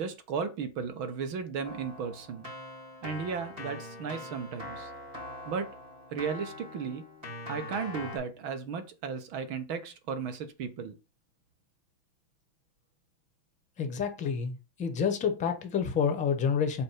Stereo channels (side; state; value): left; late; 6.2 ms